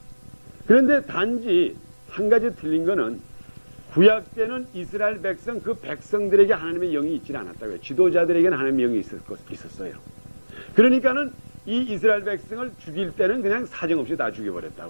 그런데 단지 한 가지 틀린 거는 구약 때는 이스라엘 백성, 그 백성들에게 하나님의 영이 있지 않았다고요. 지도자들에게는 하나님의 영이 있었어요. 그러니까는 이 이스라엘 백성을 죽일 때는 그냥 사정없이 다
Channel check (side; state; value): both; inverted; correlation -1.00